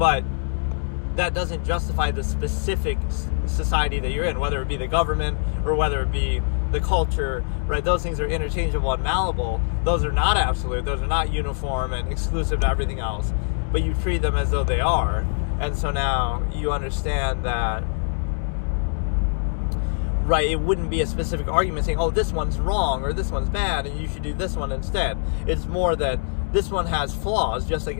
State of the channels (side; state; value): right; silent; digital silence